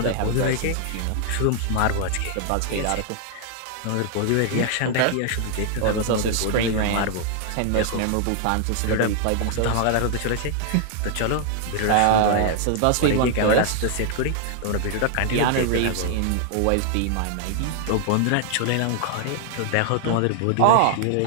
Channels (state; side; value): different; both; correlation 0.00